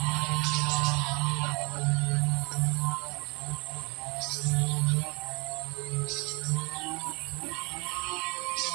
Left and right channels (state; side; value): quieter; left; 29.5 dB